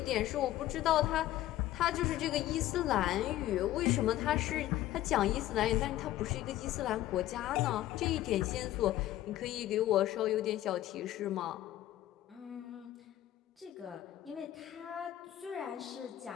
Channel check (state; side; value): quieter; right; 14.1 dB